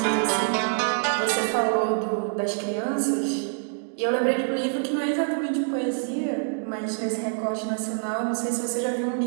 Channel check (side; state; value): left; silent; digital silence